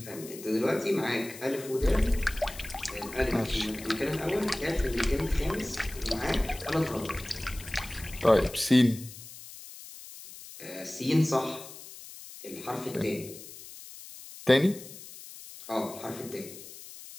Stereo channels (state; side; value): noise; left; hiss, 15 dB below the sound